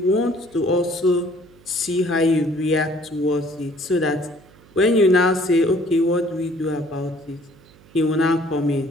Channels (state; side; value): noise; right; hum, 26 dB below the sound